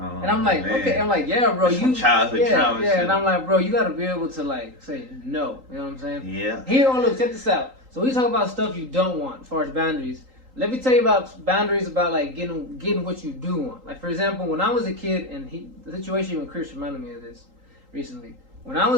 And I'm like, man. okay. I'm like, yeah, bro. That's from childhood trauma. Yeah. Shit. And I'm like, bro, you gotta be able to like say no. You know what I'm saying? Yeah. Here, look, check this out. So we talk about stuff you don't want as far as boundaries. Let me tell you about boundaries about like getting what you do want. Like for example, when I was a kid, and the situation with Chris reminded me of this recently. When I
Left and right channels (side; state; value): left; late; 3.8 ms